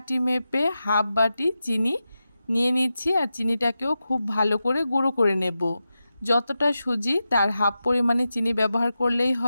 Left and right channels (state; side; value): inverted; both; correlation -0.91